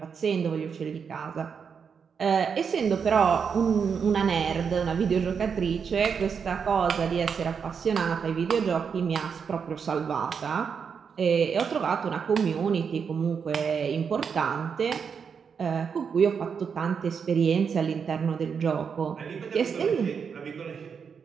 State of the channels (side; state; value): left; quieter; 6.4 dB